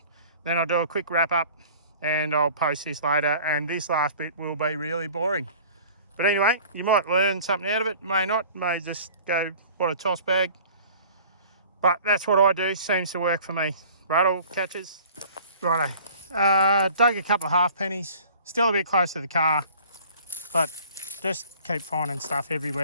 Then I'll do a quick wrap up and I'll post this later. And this last bit will be really boring. But anyway, you might learn something out of it, may not, may just go, what a toss bag. But that's what I do, seems to work for me. Rattle catches. Righto. Dug a couple of half pennies. Still a bit close to the car, but just keep finding stuff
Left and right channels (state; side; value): inverted; both; correlation -0.47